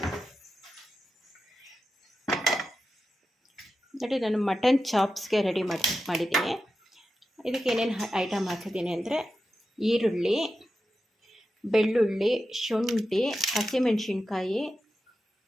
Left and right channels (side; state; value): both; normal; correlation 0.91